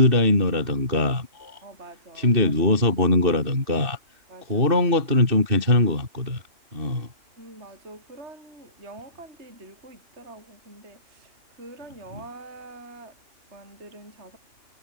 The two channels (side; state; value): left; late; 2.6 ms